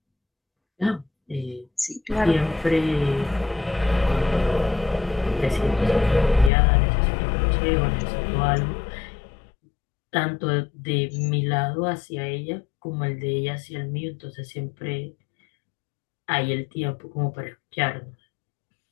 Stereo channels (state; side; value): drops out; right; at 6.5 s